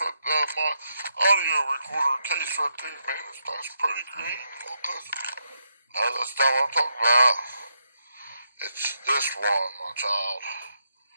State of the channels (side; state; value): both; inverted; correlation -0.80